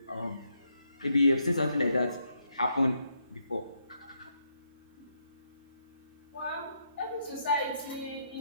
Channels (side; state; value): both; inverted; correlation -0.77